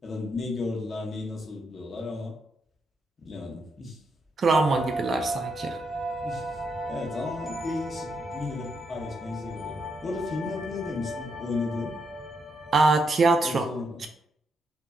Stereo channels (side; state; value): both; normal; correlation 0.79